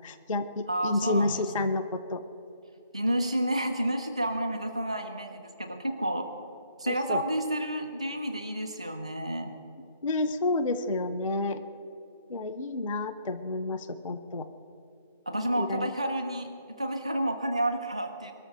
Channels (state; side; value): inverted; both; correlation -0.69